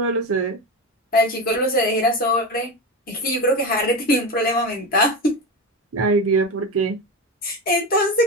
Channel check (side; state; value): both; normal; correlation 0.20